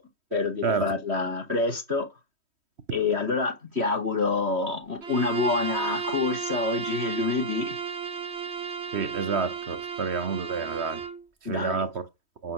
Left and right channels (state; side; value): late; left; 3.1 ms